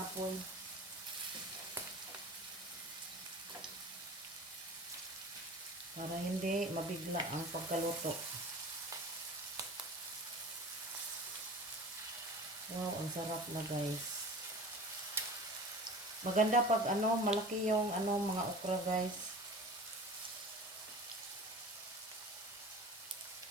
Para hindi mabigla ang pagkaluto. Wow, ang sarap na guys. Maganda pag malaki yung mga okra guys.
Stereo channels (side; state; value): both; normal; correlation 0.38